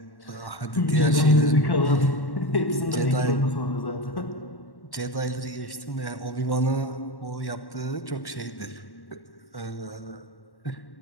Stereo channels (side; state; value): right; late; 1.1 ms